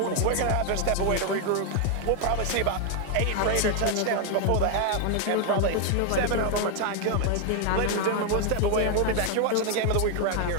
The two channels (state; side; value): different; both; correlation 0.01